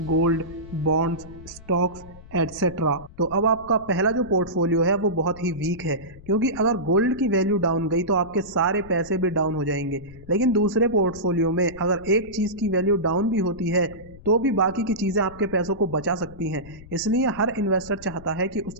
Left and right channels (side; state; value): left; noise; rumble, 19 dB below the sound